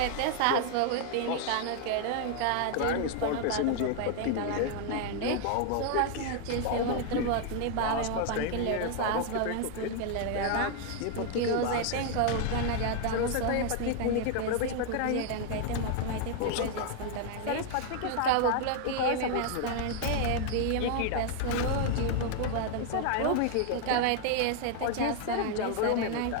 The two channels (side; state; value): both; different; correlation 0.00